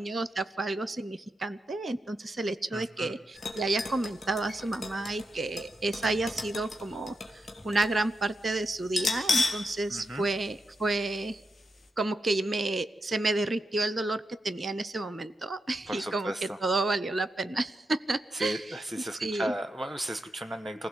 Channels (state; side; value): normal; both; correlation 0.86